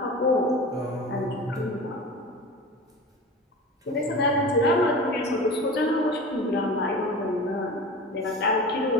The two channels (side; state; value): both; normal; correlation 0.33